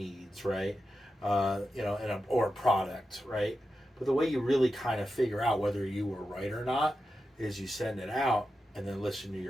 right? Or a product, right? But the way you really kind of figure out whether you were right or not is you send it out and then listen to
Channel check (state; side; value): normal; both; correlation 0.90